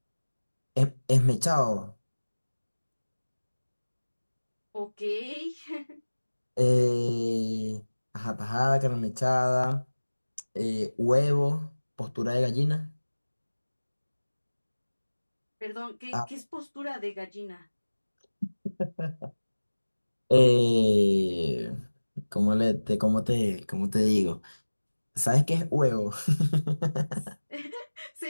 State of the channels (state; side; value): inverted; both; correlation -1.00